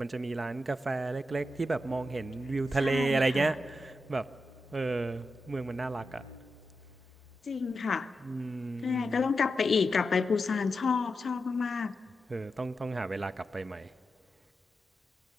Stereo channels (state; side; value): normal; both; correlation 0.88